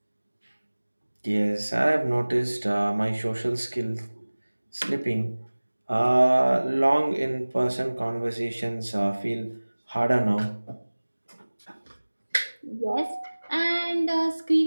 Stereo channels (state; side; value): inverted; both; correlation -1.00